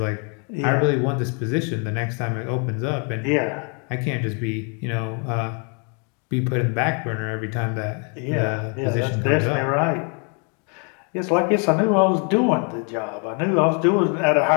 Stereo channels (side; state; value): right; quieter; 37.2 dB